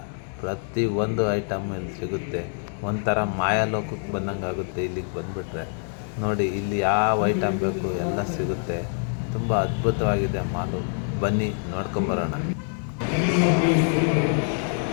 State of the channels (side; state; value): right; silent; 55 dB below the other